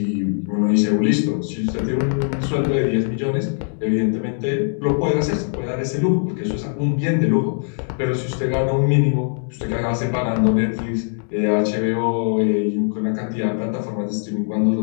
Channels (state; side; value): silent; right; 65 dB below the other